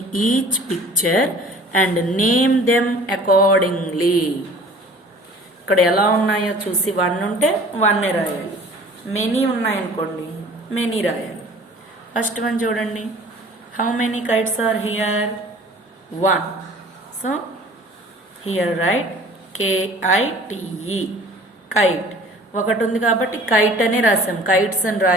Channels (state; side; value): normal; both; correlation 0.48